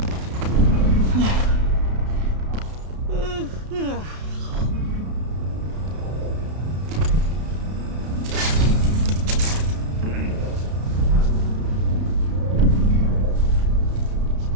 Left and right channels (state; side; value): late; left; 32 ms